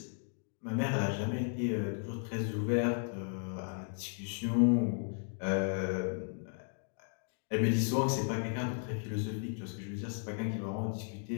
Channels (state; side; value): silent; right; 54 dB below the other